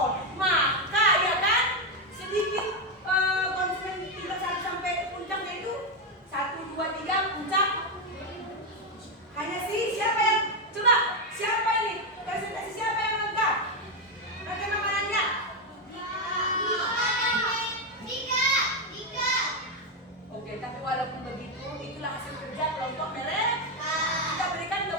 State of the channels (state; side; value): normal; both; correlation 0.06